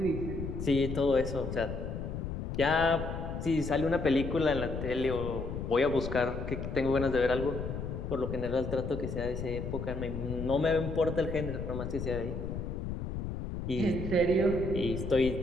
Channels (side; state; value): left; noise; rumble, 5 dB below the sound